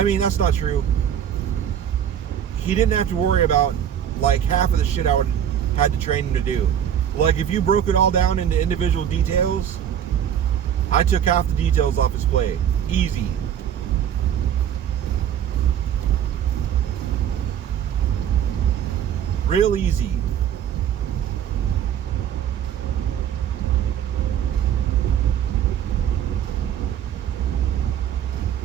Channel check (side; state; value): left; quieter; 9.5 dB